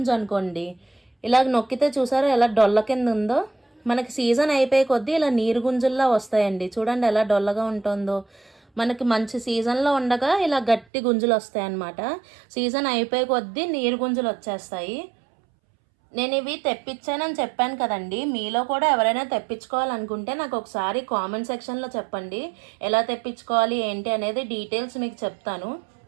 అనుకోండి, ఇలాగ నొక్కితే చూసారో ఎలా డొల్ల కింద ఉందో, మనకి సీజన్ అయిపోయే కొద్దీ ఇలా నీరు గుంజుల్లా వస్తాయండి. చూడండి ఎలా డొల్లగా ఉంటుందో. మనకి మంచి సీజన్లో ఉండగా ఇలా గట్టి గుంజులు వస్తాయి అన్నమాట. సీజన్ అయిపోయే కొద్దీ నీరు గుంజులు వచ్చేస్తాయి. నేను ఇవి తెప్పించానని చెప్పాను కదండి, మీలో కూడా ఎవరైనా తెప్పించుకోవాలనుకుంటే నాకు ఒకసారి కామెంట్ సెక్షన్లో చెప్పండి. ఎలా తెప్పించుకోవాలి ఏంటి అనేది డీటెయిల్స్ మీకు చెప్తాను.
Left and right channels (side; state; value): left; drops out; at 10.9 s